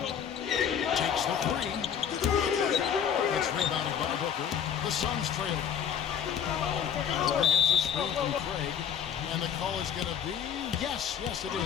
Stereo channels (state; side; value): quieter; right; 8.4 dB